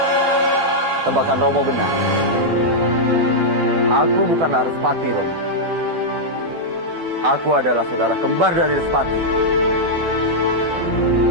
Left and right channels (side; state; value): left; late; 12 ms